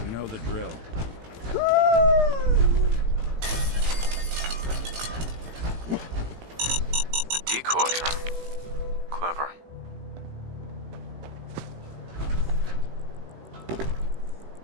You know the drill. A decoy, huh? Clever.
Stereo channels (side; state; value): left; late; 18 ms